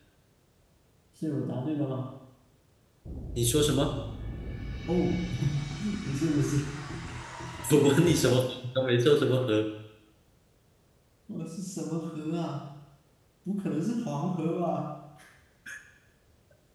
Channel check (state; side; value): identical; both; correlation 1.00